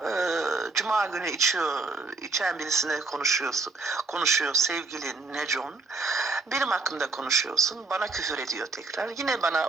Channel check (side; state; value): left; quieter; 3.7 dB